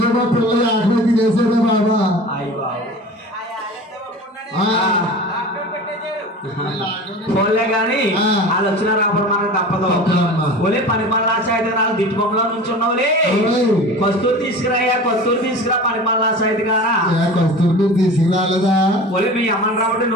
మా పిల్లలు ఆకలి తినేసాడే బాబా పోలే గాని వాళ్ళు వచ్చిన రాబడి మనకు తప్పదు ఓలే పని పనులాస అయితే నాకు దిట్టుబొమ్మలో నుంచి ఉన్నావులే కస్తూరి తీసుకురా పని పనులాస అయితే కానా కస్తూరి తీసుకురాలేదా ఓలే మీ అమ్మని రాబట్టి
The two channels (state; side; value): normal; both; correlation 0.36